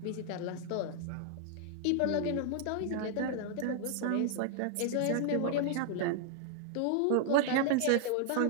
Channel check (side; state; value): both; different; correlation 0.00